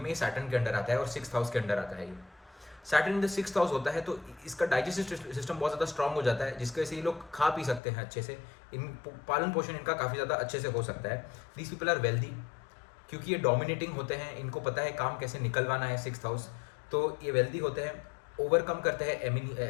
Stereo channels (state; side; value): drops out; right; at 7.8 s